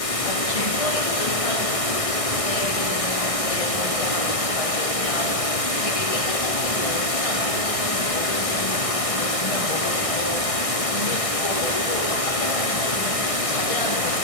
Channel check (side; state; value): right; late; 1.6 ms